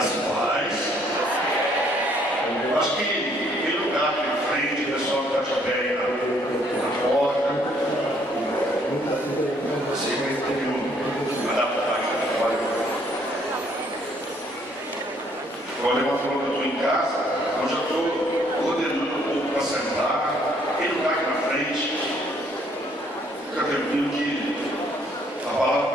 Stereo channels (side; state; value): both; normal; correlation 0.65